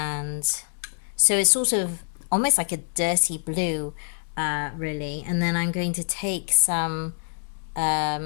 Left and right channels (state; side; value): silent; right; digital silence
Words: so it's sort of almost like a dirty blue, really. And then I'm going to take some